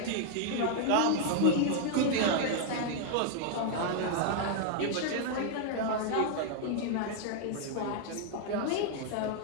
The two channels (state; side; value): different; both; correlation 0.00